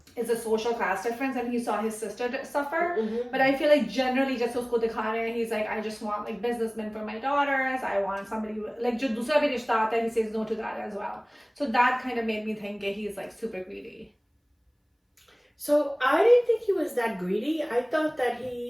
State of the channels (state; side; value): identical; both; correlation 1.00